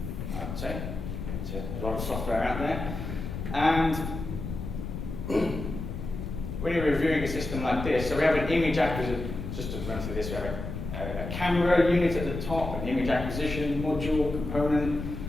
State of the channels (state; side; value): noise; left; rumble, 6 dB below the sound